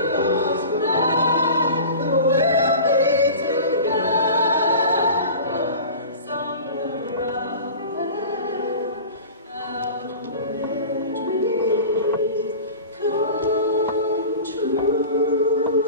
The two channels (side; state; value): both; inverted; correlation -0.36